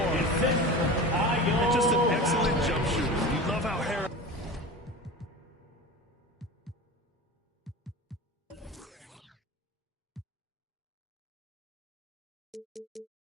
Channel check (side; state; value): both; normal; correlation 0.31